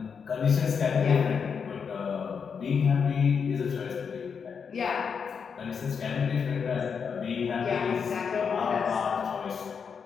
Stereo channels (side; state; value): right; quieter; 6.3 dB